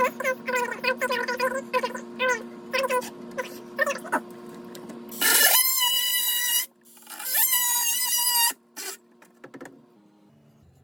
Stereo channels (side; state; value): both; identical; correlation 1.00